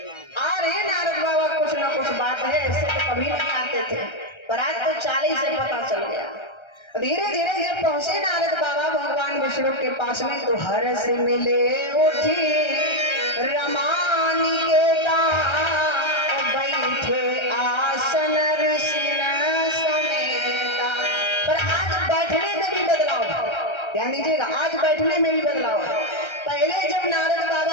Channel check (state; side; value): late; right; 1.3 ms